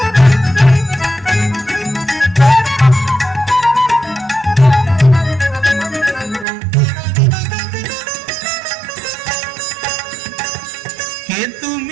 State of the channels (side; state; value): left; drops out; at 6.5 s